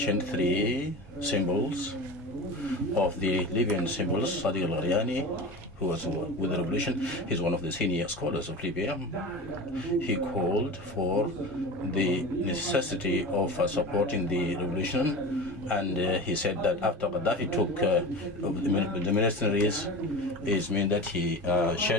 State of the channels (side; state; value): both; normal; correlation 0.31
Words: 3 symbols of the Libyan symbols. Sadiq al-Gharyani, who was with the revolution, he's one of the senior scholars of Libya. He called for the necessity of supporting the revolution, and he said that after Gaddafi took the mercenaries, it means that he